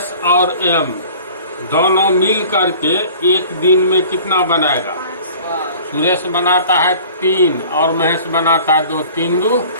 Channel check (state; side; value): inverted; both; correlation -0.46